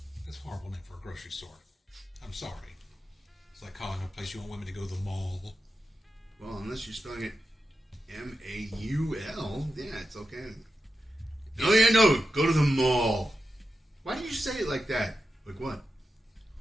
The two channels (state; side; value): normal; both; correlation 0.90